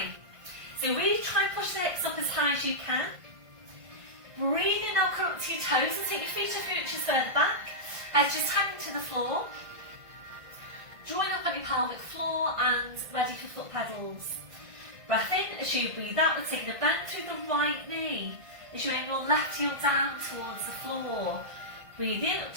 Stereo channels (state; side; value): late; left; 1.5 ms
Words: So really try and push the hips up as high as you can. Breathe in now, come up to your toes and take your feet a few inches further back. Head just hanging to the floor. Drawing up on your pelvic floor and ready for foot pedals. Breath in as you breathe out. We're taking a bend through the right knee as you bring your left heel down towards the floor. Breathe in up